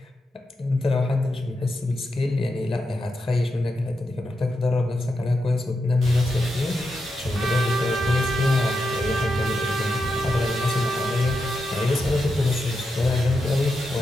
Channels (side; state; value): both; normal; correlation 0.86